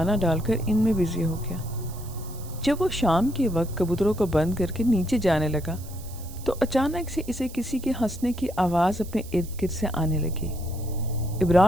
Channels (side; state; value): right; noise; hiss, 18 dB below the sound